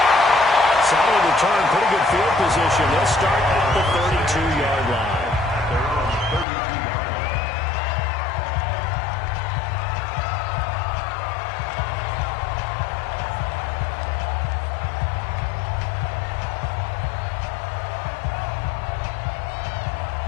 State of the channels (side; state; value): right; drops out; at 6.5 s